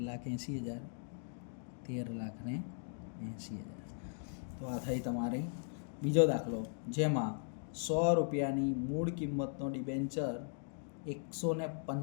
13,80,000. તો આ થઈ તમારી બીજો દાખલો, જેમાં 100 રૂપિયાની મૂળ કિંમતનો ડિબેન્ચર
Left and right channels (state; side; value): silent; right; digital silence